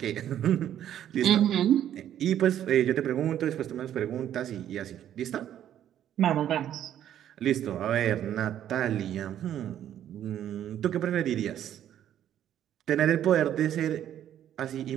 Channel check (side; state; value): left; quieter; 10.8 dB